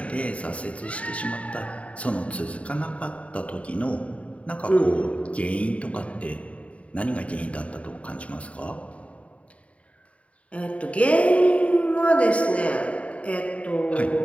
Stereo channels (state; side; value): late; right; 0.065 ms